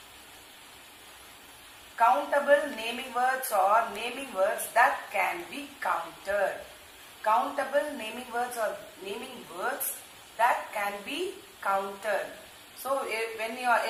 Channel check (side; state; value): both; identical; correlation 1.00